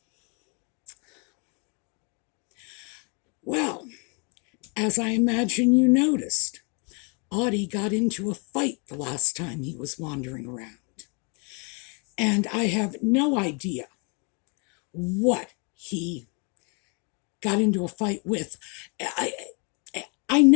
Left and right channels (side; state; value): right; quieter; 34.9 dB